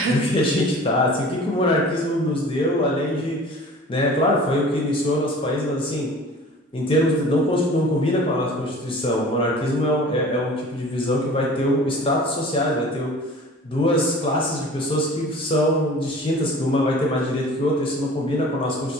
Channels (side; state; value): both; normal; correlation 0.44